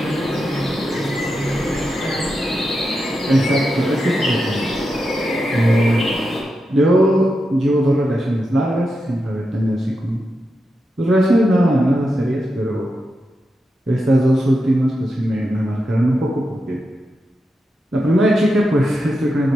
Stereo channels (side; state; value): both; normal; correlation 0.88